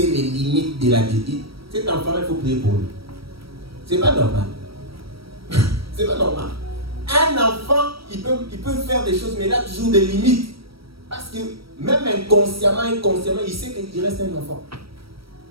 les limites de la vie. Cet enfant, il faut prier pour lui. C'est pas normal. C'est pas normal. Un enfant, il peut faire des choses, mais il a toujours des limites. Parce que même inconsciemment, il sait qu'il reste un enfant.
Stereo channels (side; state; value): left; late; 0.75 ms